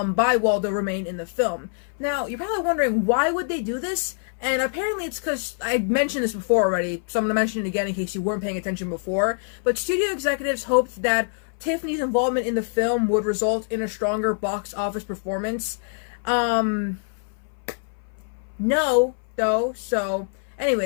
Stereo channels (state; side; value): silent; right; 60 dB below the other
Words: Waldo remain in the film. Now, you're probably wondering, why would they do this? And apparently it's because, I mentioned this before already, so I'm going to mention it again in case you weren't paying attention before, but studio executives hoped that Tiffany's involvement in the film would result in a stronger box office performance. No, though, so,